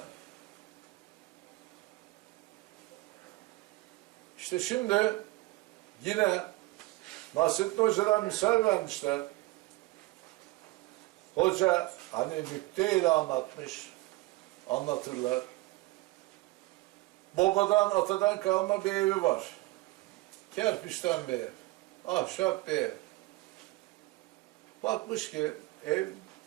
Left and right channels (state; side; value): quieter; left; 20.1 dB